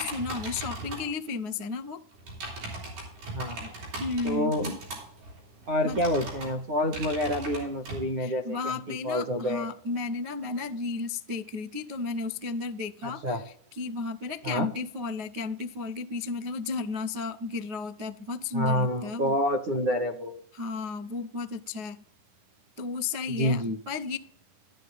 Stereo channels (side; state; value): left; late; 9.5 ms